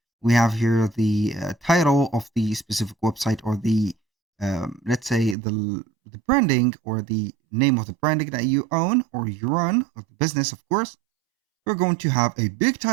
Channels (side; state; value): left; drops out; at 5.4 s